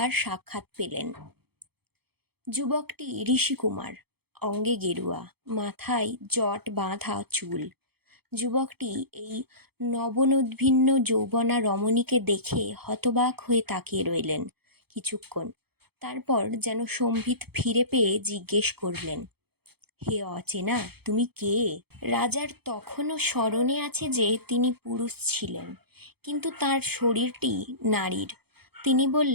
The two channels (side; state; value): left; late; 0.96 ms